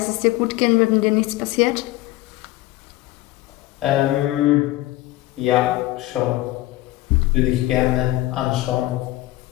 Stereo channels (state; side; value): quieter; right; 17.3 dB